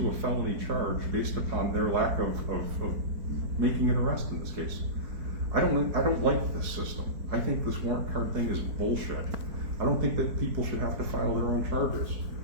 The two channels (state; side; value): late; left; 4.4 ms